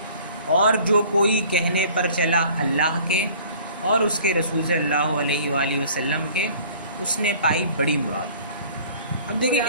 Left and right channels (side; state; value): both; inverted; correlation -0.50